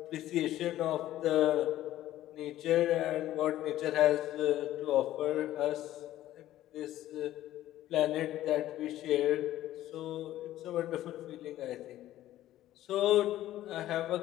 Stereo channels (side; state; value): right; quieter; 13.9 dB